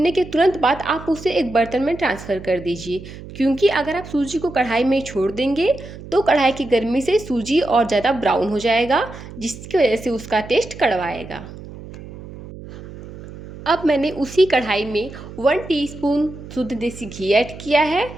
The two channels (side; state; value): right; noise; hum, 14 dB below the sound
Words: के तुरंत बाद आप उसे एक बर्तन में ट्रांसफ़र कर दीजिए, क्योंकि अगर आप सूजी को कढ़ाई में छोड़ देंगे तो कढ़ाई की गर्मी से सूजी और ज़्यादा ब्राउन हो जाएगा, जिसकी वजह से उसका टेस्ट कड़वा आएगा। अब मैंने उसी कढ़ाई में 1 टीस्पून शुद्ध देसी घी ऐड किया है,